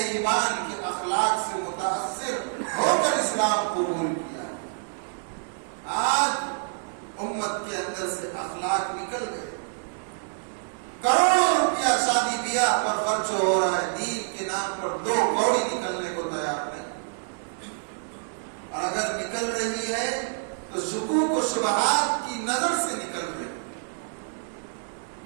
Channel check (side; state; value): left; silent; digital silence